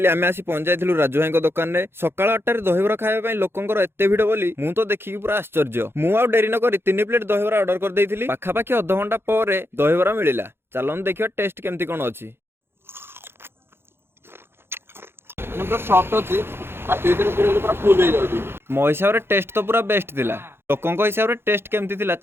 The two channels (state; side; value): late; left; 0.11 ms